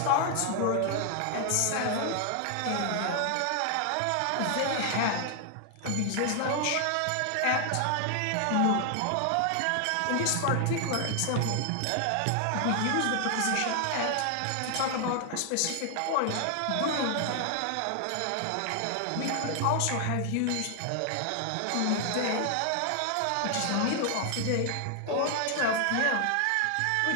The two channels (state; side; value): different; both; correlation 0.00